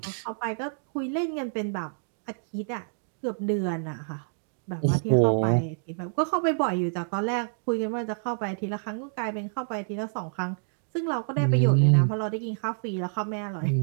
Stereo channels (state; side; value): silent; left; digital silence